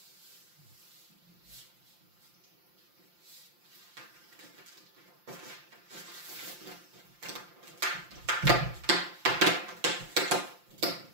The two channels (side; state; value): left; late; 5.7 ms